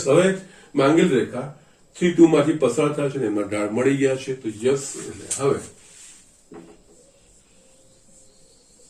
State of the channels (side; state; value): both; identical; correlation 1.00